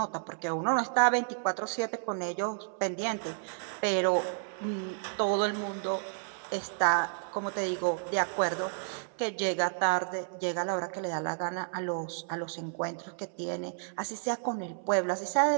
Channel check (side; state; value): left; silent; 57 dB below the other